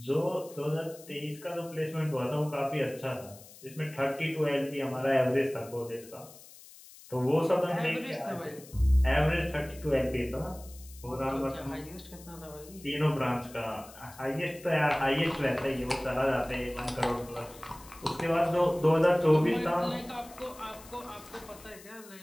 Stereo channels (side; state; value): left; noise; hiss, 20 dB below the sound